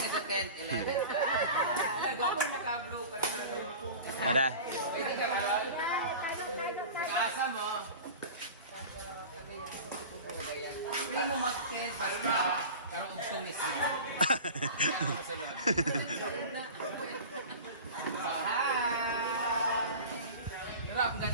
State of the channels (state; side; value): inverted; both; correlation -0.35